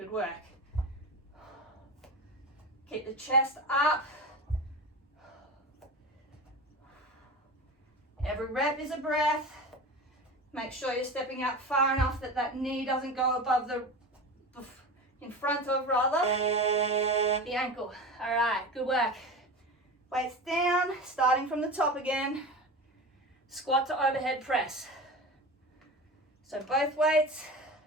work. Keep the chest up. Every rep is a breath. Make sure you're stepping out far enough that that knee doesn't go above in front of rather, the ankle. All right, good work. Weights down, starting from the top again. Squat to overhead press. So both weights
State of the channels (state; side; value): normal; both; correlation 0.29